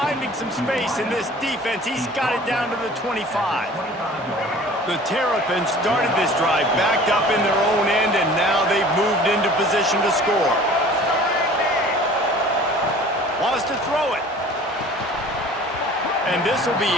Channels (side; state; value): both; normal; correlation 0.46